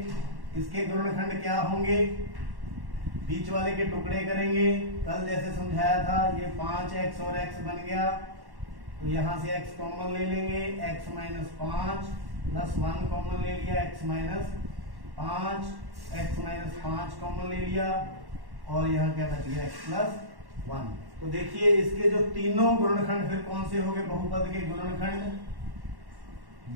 इसके गुणनखंड क्या होंगे, बीच वाले के टुकड़े करेंगे। कल जैसे समझाया था, ये 5x और x बन गया, तो यहां से x कॉमन ले लेंगे, x -5 प्लस 1 कॉमन ले लिया, x -5 कॉमन ले लिया, और यहाँ क्या बच गया, x + 1। तो देखिए इसके जो तीनों गुणनखंड फिर कौन से हो गए, बहुपद के गुणनखंड।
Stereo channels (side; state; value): left; late; 1.1 ms